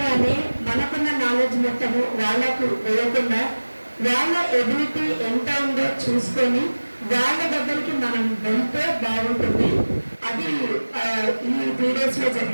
మనకున్న నాలెడ్జ్ మొత్తము వాళ్ళకు వేయకుండా వాళ్ళ ఎబిలిటీ ఎంత ఉందో చూసుకొని వాళ్ళ దగ్గరికి మనం వెళ్తే బాగుంటుంది. అది ఈ 3 days లో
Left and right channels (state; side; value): inverted; both; correlation -1.00